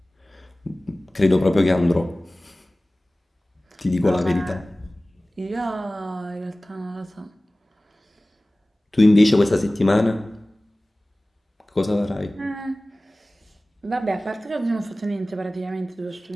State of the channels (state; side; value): normal; both; correlation 0.98